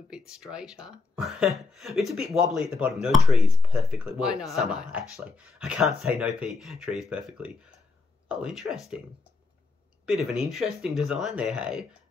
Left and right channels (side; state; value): right; quieter; 3.5 dB